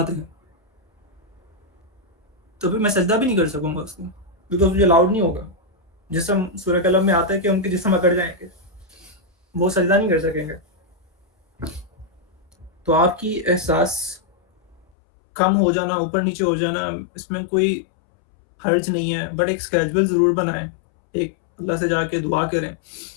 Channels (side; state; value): right; drops out; at 14.8 s